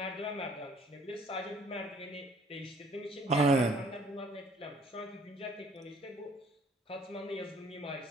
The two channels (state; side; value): normal; both; correlation 0.58